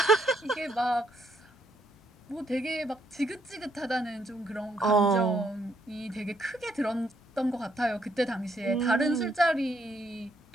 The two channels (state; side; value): normal; both; correlation 0.73